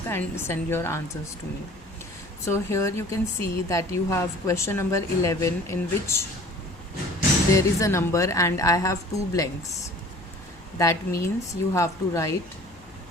and send your answers to me. So here you can see that you have question number 11, in which there is a number and I have two blanks. That means you have to write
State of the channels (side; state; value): left; noise; hum, 25 dB below the sound